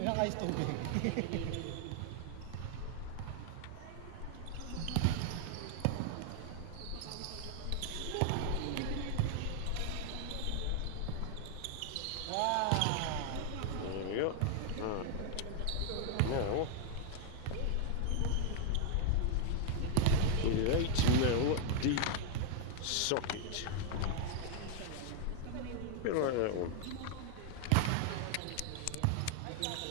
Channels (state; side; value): different; both; correlation 0.00